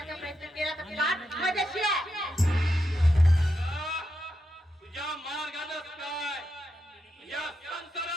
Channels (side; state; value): both; normal; correlation 0.85